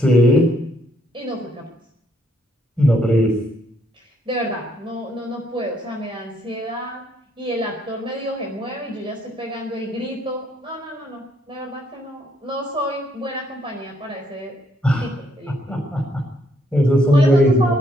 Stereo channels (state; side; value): normal; both; correlation 0.71